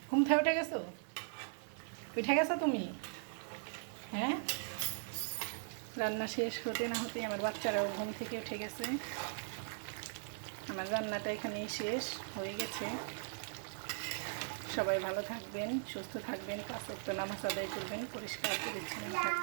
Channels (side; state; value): left; silent; digital silence